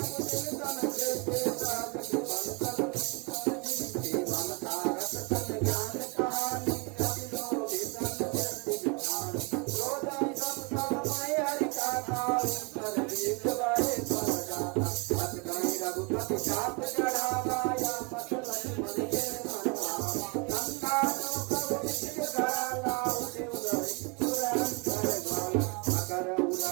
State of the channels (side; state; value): left; quieter; 31.7 dB